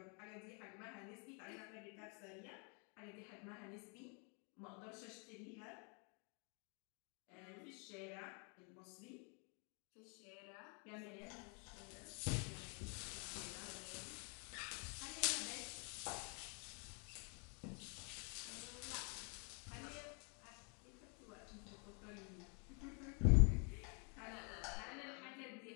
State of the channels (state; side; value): quieter; right; 36.8 dB